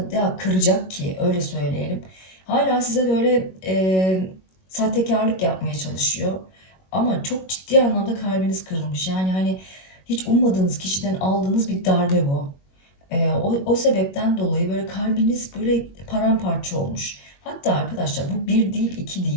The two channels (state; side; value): late; right; 21 ms